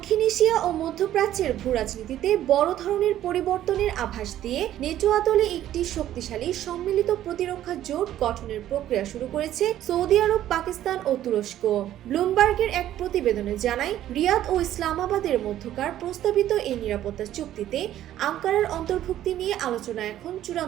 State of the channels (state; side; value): quieter; left; 12.4 dB